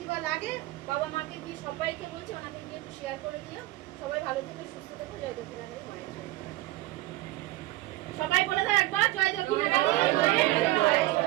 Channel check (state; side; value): quieter; left; 18.2 dB